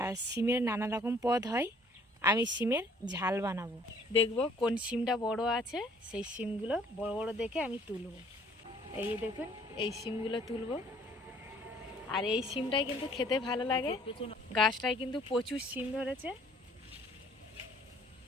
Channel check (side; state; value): both; normal; correlation 0.58